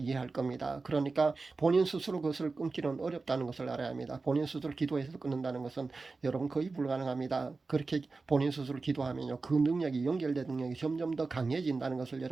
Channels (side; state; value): left; quieter; 3.9 dB